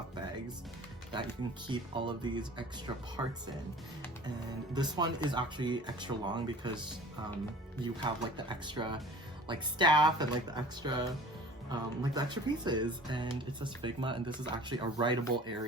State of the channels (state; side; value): normal; both; correlation 0.45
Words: bags that you can keep all of these extra parts in. And this one is actually extra long because you have like the extra like staff and like the extra pieces, and it says Figma, and this is actually a writable